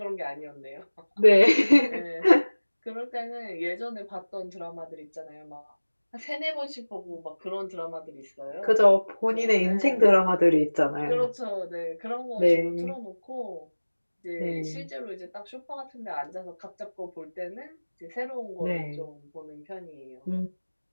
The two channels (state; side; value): inverted; both; correlation -1.00